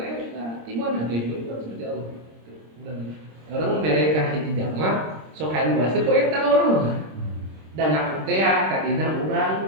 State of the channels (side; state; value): left; late; 26 ms